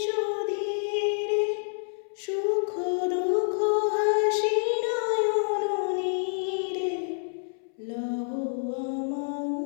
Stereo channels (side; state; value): right; silent; 59 dB below the other